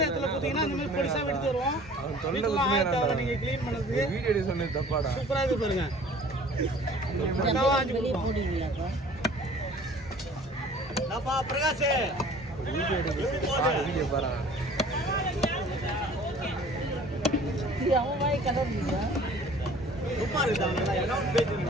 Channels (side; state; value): both; normal; correlation 0.49